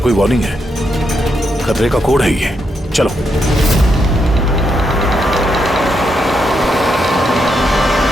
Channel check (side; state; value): both; normal; correlation 0.81